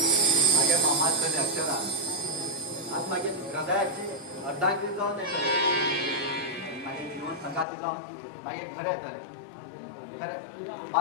माझ्या मामाकडे अक्षरा आज माझ्या हृदयाची अर्धांगी जाऊन येतले माझे जीवन संघाची जाऊन माझे खरे येतले खरे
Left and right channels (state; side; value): drops out; right; at 7.7 s